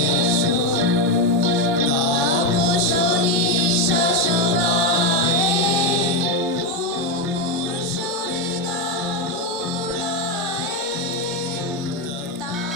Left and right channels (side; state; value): both; normal; correlation 0.07